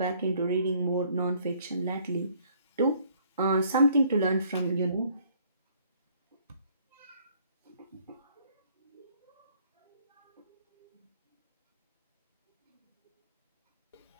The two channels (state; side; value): inverted; both; correlation -0.62